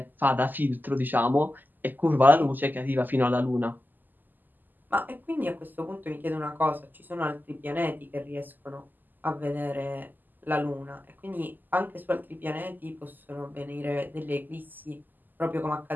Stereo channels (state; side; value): late; left; 0.088 ms